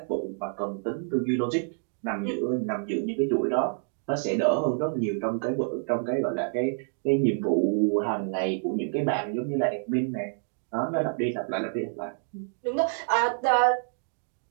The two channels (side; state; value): left; silent; 58 dB below the other